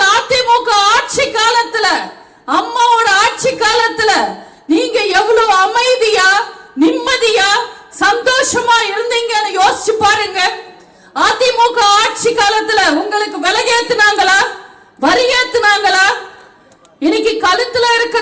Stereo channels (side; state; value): both; identical; correlation 1.00